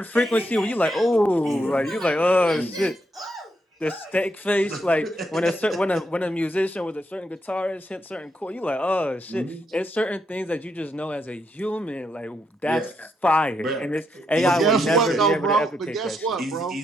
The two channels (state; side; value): normal; both; correlation 0.79